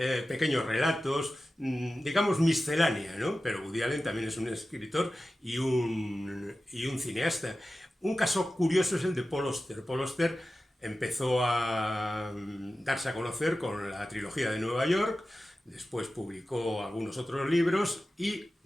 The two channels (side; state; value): both; normal; correlation 0.95